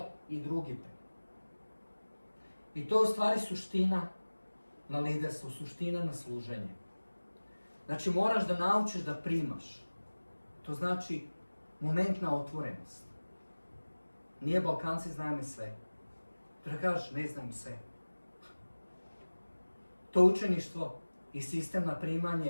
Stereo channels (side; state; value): both; inverted; correlation -1.00